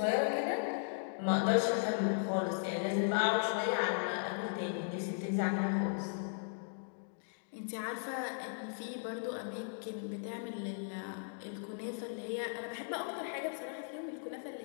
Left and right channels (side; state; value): right; silent; digital silence